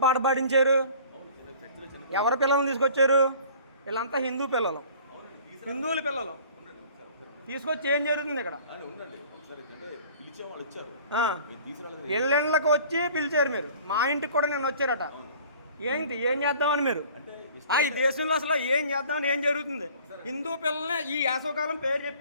పాట పాడించారు? ఎవరి పిల్లల్ని తీసుకొచ్చారు? వీళ్ళంతా హిందూ పిల్లలు, హిందువుల పిల్లలు తీసుకొచ్చి ఏం జరుగుతుంది ఇక్కడ? ఇళ్ళకి వచ్చి పిలిచారు మీరు. మా ఇంటికి కూడా నేను వచ్చారట. ఏంటి ఏం చేద్దామని మీరు? ఈ దేశంలో అసలు ఏం చేద్దామని ఏం జరుగుతుంది? హిందూ పిల్లల్ని ఈ వేసవకాలం పేరు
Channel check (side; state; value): both; inverted; correlation -0.49